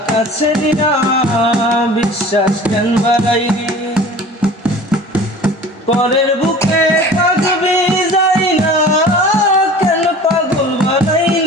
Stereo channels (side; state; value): both; normal; correlation 0.42